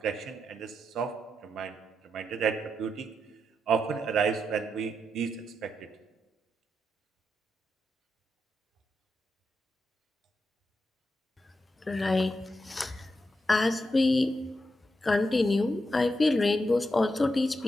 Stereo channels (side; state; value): both; normal; correlation 0.85